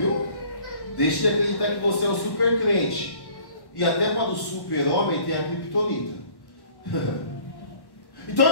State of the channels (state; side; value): late; right; 1.1 ms